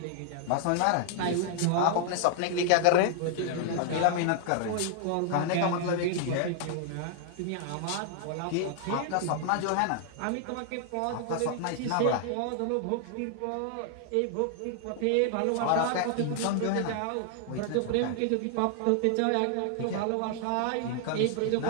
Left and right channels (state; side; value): different; both; correlation 0.00